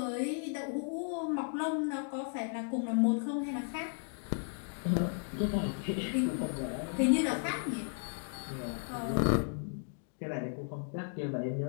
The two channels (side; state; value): right; silent; 55 dB below the other